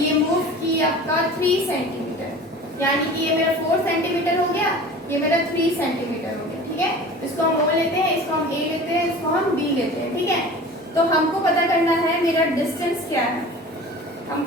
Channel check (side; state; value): both; normal; correlation 0.39